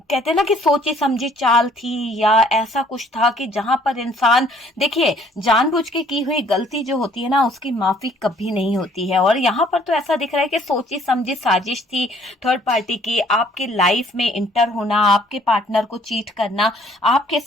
कहते हैं ना कि सोची समझी चाल थी, या ऐसा कुछ था कि जहां पर इंसान, देखिए, जानबूझ के की हुई गलती जो होती है ना, उसकी माफी कभी नहीं होती है। और यहाँ पर तो ऐसा दिख रहा है कि सोची समझी साजिश थी थर्ड पार्टी की, आपके लाइफ में इंटर होना, आपके पार्टनर को चीट करना, आपके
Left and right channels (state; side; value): normal; both; correlation 0.60